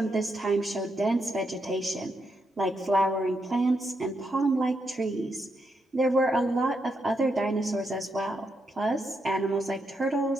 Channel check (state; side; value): normal; both; correlation 0.81